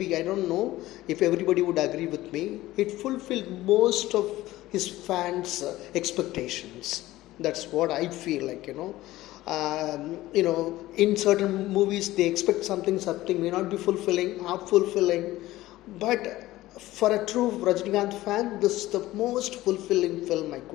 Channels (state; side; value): quieter; right; 16.6 dB